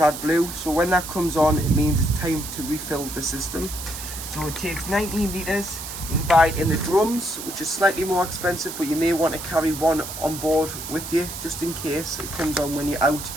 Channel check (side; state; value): right; noise; hiss, 9 dB below the sound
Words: so when that comes on, it means it's time to refill the system. So it takes 19 litres. You can buy it in the drums, which is slightly more expensive, but you may want to carry one on board with you just in case it comes on when you're out